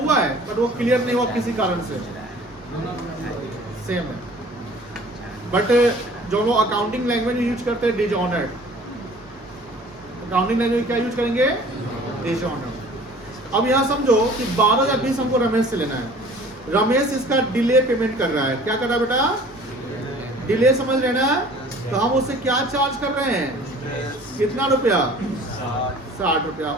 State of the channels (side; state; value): both; normal; correlation 0.49